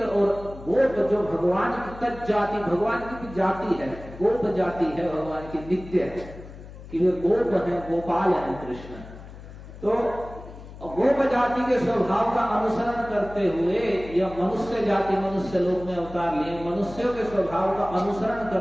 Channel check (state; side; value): noise; left; hum, 15 dB below the sound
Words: और गोप जो भगवान की तज जाति, भगवान की जाति है, गोप जाति है भगवान की, नित्य है कि वे गोप है, गोपाल है कृष्ण। तो गोप जाति के स्वभाव का अनुसरण करते हुए या मनुष्य जाति मनुष्य लोक में अवतार लिए मनुष्यों के स्वभाव का अनुसरण